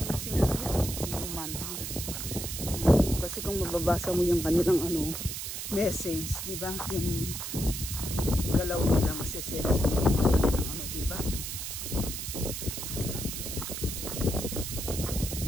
kung mababasa mo yung kanilang message, di ba? Yung galaw nila, masisense mo din yung kanilang di ba?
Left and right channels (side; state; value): right; noise; hiss, 5 dB below the sound